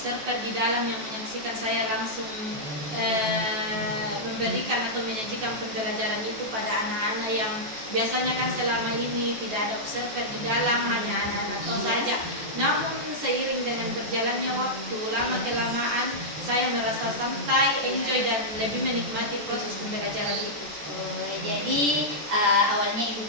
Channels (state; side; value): late; left; 14 ms